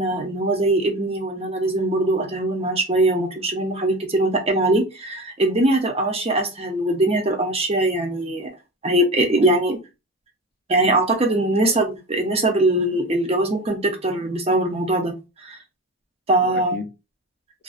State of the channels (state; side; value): normal; both; correlation 0.29